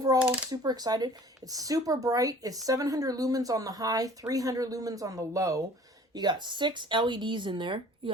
super excited. It's super bright. It's 700 lumens on the high, 300 lumens on the low. You got 6 LEDs in there. You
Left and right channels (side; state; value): both; normal; correlation 0.49